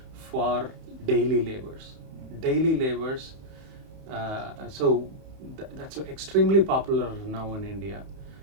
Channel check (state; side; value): late; left; 31 ms